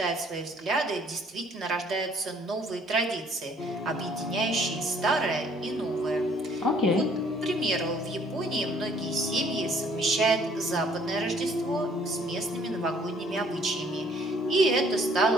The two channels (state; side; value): normal; both; correlation 0.60